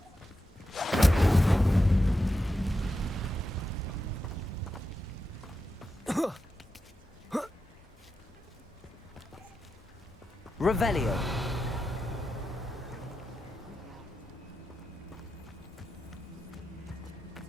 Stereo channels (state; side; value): normal; both; correlation 0.89